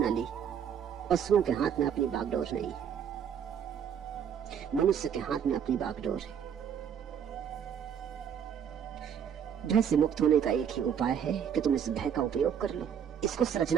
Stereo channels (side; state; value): left; quieter; 8.3 dB